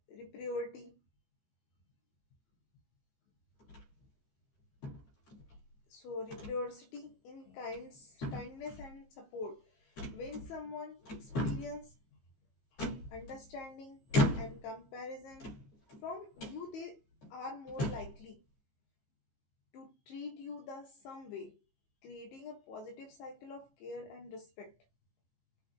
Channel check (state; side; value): late; right; 15 ms